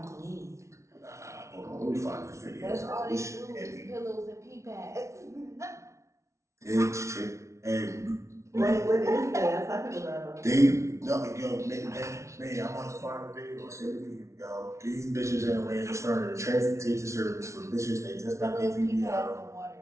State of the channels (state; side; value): late; left; 0.14 ms